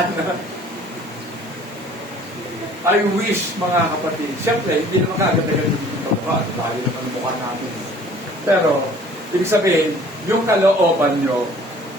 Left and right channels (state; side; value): normal; both; correlation 0.52